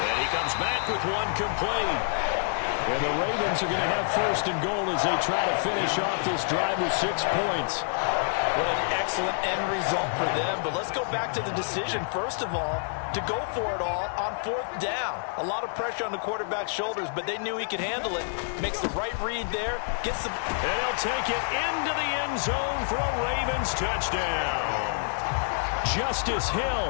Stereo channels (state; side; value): silent; right; digital silence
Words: he comes back with one complete. And the Ravens are going to have first and goal as they try to finish off this drive with 6 points. What an excellent end result for them. But let's go back to the decision, first of all, to go for it all on 4th down. A lot of pressure on the quarterback's shoulders, but they knew he could handle it. Makes the right read there. Gets the... And he'll take it into the end zone for a Ravens touchdown. Justice